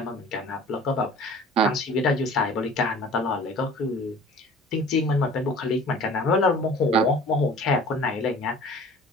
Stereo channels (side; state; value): both; normal; correlation 0.45